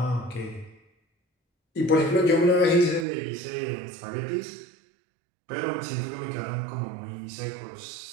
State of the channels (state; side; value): drops out; left; at 3.1 s